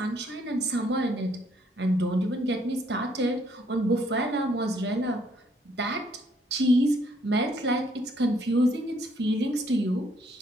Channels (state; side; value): normal; both; correlation 0.67